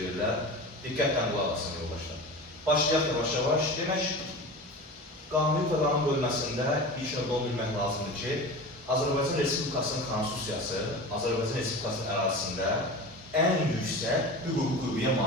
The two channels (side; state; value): both; normal; correlation 0.32